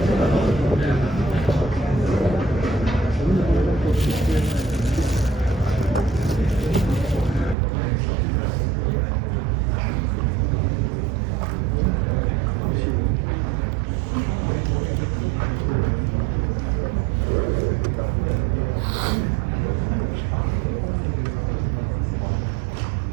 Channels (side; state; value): left; drops out; at 7.6 s